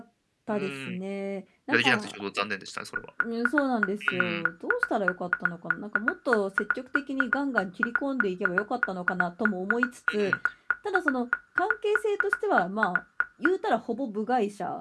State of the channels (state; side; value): identical; both; correlation 1.00